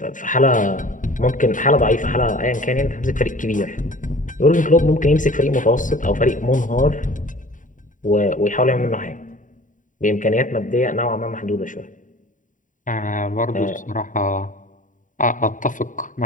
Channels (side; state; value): right; late; 0.38 ms